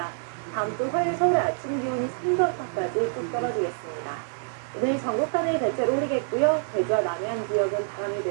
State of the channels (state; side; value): silent; left; digital silence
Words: 다음 주 화요일 서울의 아침 기온이 3도 안팎까지 뚝 떨어지겠습니다. 오늘 전국간에 대체로 흐리겠고요. 제주와 남해안 지역은 바람이